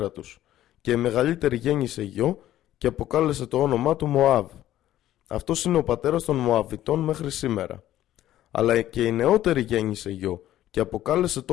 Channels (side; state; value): right; quieter; 13.1 dB